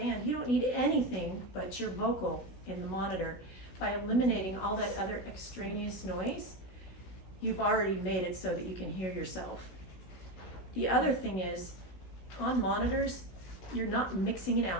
you don't need anything but your vocal in the monitor. By eliminating all that other extraneous noise, you've already made it so that you can hear yourself. The other thing is, on monitors, you're not mixing an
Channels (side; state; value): right; late; 16 ms